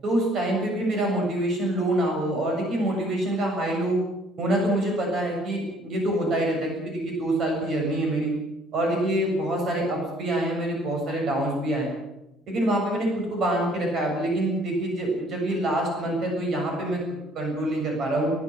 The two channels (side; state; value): both; normal; correlation 0.60